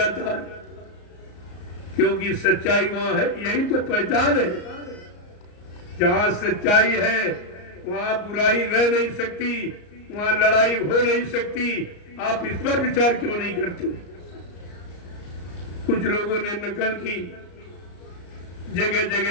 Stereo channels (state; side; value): late; right; 34 ms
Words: है, क्योंकि सच्चाई वहां है। यही तो पहचान है, जहां सच्चाई है वहां बुराई रह नहीं सकती, वहां लड़ाई हो नहीं सकती। आप इस पर विचार क्यों नहीं करते? कुछ लोगों ने नकल की, जगह